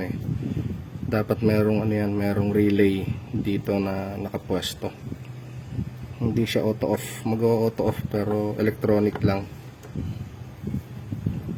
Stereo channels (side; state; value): both; identical; correlation 1.00